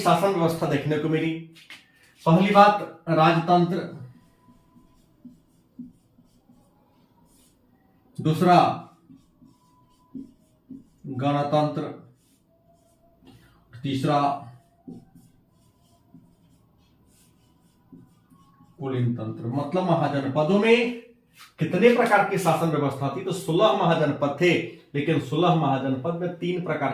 व्यवस्था देखने को मिली। पहली बात, राजतंत्र। दूसरा गणतंत्र, तीसरा कुलीन तंत्र। मतलब महाजनपदों में कितने प्रकार की शासन व्यवस्था थी? तो 16 महाजनपद थे, लेकिन 16 महाजनपद में 3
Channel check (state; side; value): identical; both; correlation 1.00